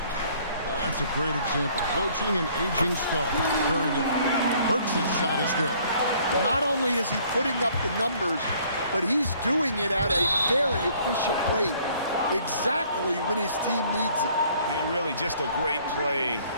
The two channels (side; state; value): both; inverted; correlation -0.59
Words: for. That's a great example. Coaching an aging star. Very different. Burks' shot is good. Not only is he putting up the numbers, but he's doing it at a very efficient rate, exactly when his team needs it. And really just a great play